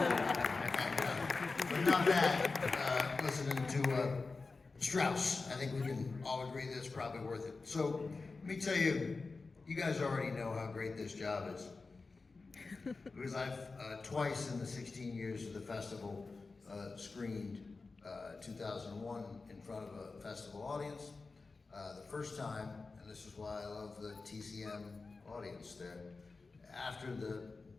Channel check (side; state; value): right; quieter; 4.0 dB